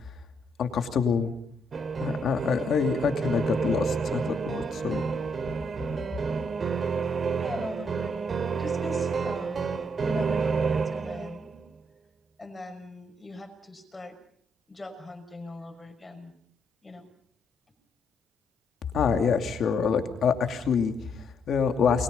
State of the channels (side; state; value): both; normal; correlation 0.74